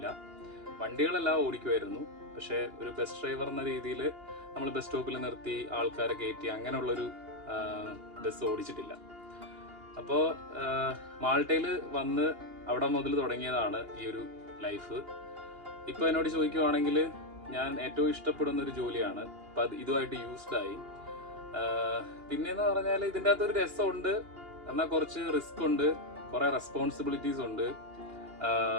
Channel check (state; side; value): late; left; 2.8 ms